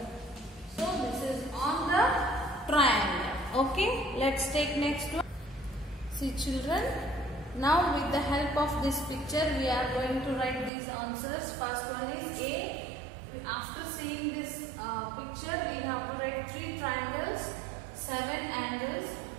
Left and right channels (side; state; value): left; drops out; at 10.7 s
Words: So this is on the triangle. Okay, let's take next one. See children, now with the help of this picture we are going to write these answers. First one is A. After seeing this picture, we have to write 3 triangles, 7 angles,